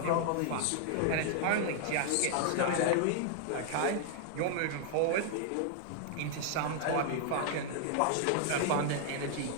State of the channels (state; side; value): different; both; correlation 0.00